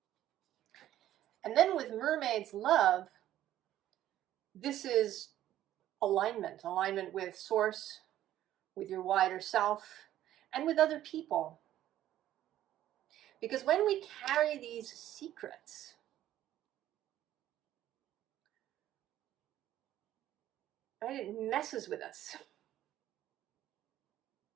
And then with Mermaid's Love, this is alignment with Source, with your wider self, and with other people. Because when we carry these secrets, right, it messes with us.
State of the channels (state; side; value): quieter; left; 12.8 dB